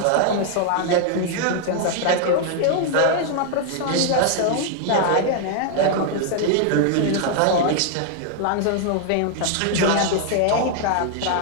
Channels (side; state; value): both; different; correlation 0.00